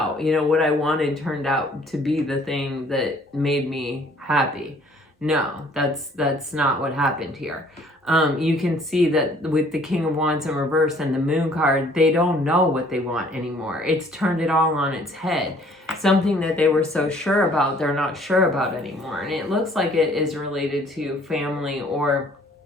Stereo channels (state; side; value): normal; both; correlation 0.58